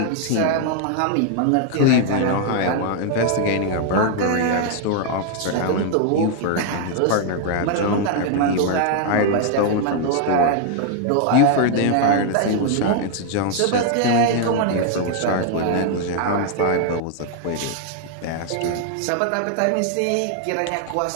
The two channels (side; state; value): both; different; correlation 0.00